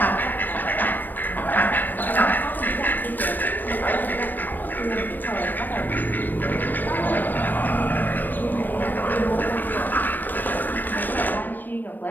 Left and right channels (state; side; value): late; right; 0.090 ms